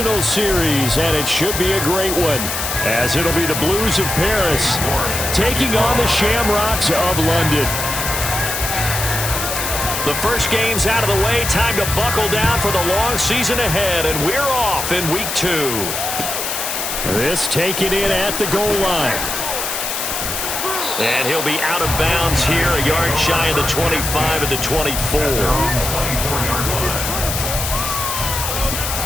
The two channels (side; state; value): left; noise; hiss, 3 dB below the sound